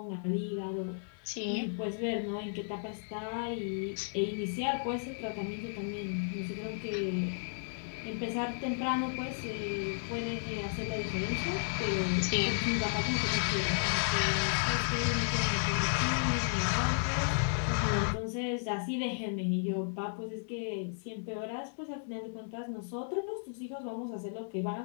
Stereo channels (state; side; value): silent; right; 55 dB below the other